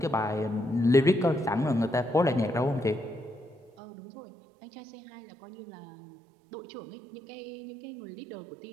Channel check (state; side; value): drops out; left; at 3.7 s